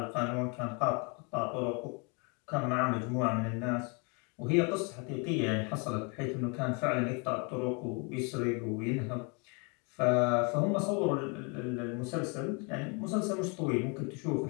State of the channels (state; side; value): quieter; right; 33.4 dB